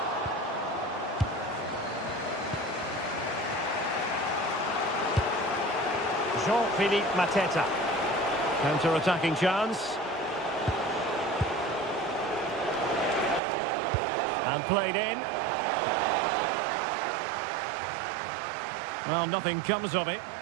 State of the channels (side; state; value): left; drops out; at 13.4 s